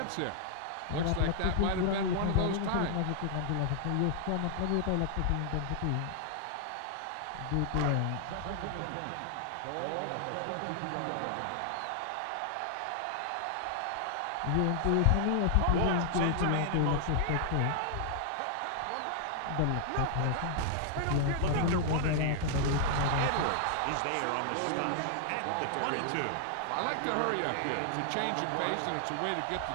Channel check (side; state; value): both; different; correlation 0.00